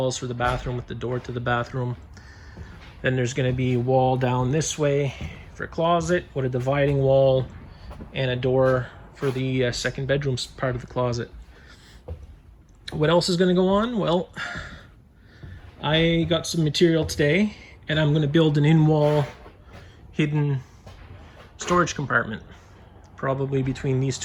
for the bathroom with the door to the bathroom. Then there's going to be a wall down this way for a closet with a dividing wall and a door for the second bedroom part of the closet. What else is going to go on? Well, I got some material today and I'm going to build an in-wall hidden storage compartment, probably between these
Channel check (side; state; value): both; identical; correlation 1.00